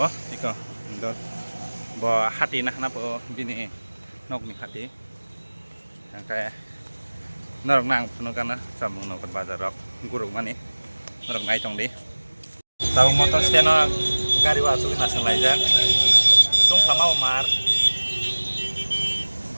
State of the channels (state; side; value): inverted; both; correlation -1.00